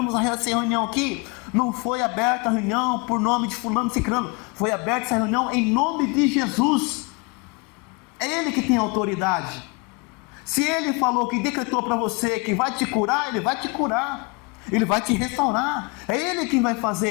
essa reunião aqui. Não foi aberta a reunião por nome de fulano ciclano. Foi aberta essa reunião em nome de Jesus. É Ele que tem autoridade. Se Ele falou que decretou para você que vai te curar, Ele vai te curar. Ele vai te restaurar. É Ele quem vai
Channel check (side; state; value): right; quieter; 28.9 dB